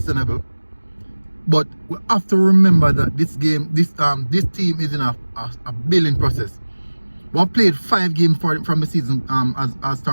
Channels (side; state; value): both; inverted; correlation -1.00